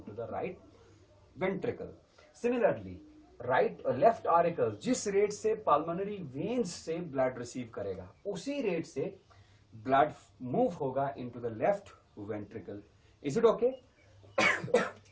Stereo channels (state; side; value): identical; both; correlation 1.00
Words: the right ventricle. Similarly right left auricle जिस रेट से पल्मोनरी वेन्स से ब्लड रिसीव करेगा, उसी रेट से ब्लड मूव होगा into the left ventricle. Is it okay?